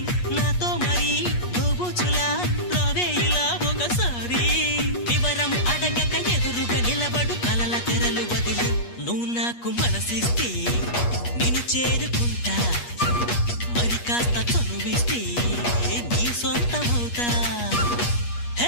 నాతో మరి దోబుచులా రావే ఇలా ఒకసారి. వివరం అడగక ఎదురుగా నిలబడు కలల తెరలు వదిలి, నువ్వు నాకు మనసిస్తే నిన్ను చేరుకుంటా, మరి కాస్త చనువిస్తే నీ సొంతమవుతా.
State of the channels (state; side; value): late; right; 8.4 ms